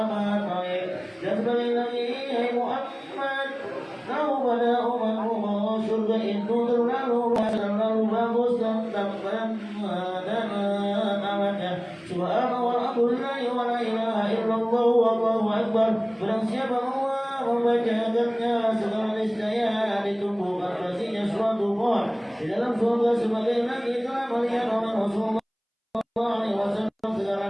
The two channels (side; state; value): both; identical; correlation 1.00